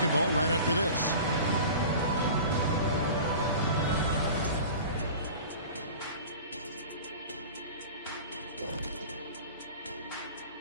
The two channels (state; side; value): inverted; both; correlation -0.37